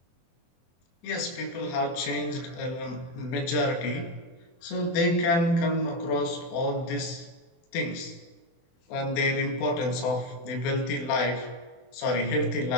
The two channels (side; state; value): right; late; 23 ms